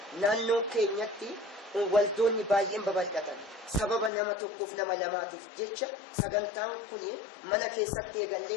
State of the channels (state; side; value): drops out; right; at 4.1 s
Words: نانو كينيتي والدوني بايين ببلدتن سبب نما توقف نما لماتف جتشا سغنتان كوني منا كيساتي